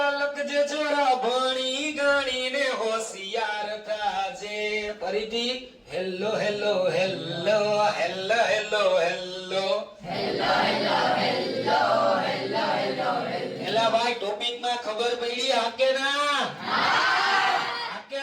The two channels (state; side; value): identical; both; correlation 1.00